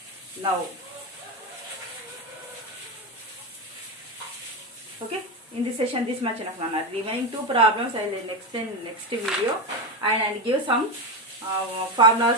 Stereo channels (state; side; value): normal; both; correlation 0.16